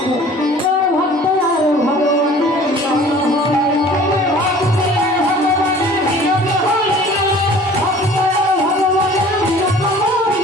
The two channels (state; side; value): normal; both; correlation 0.48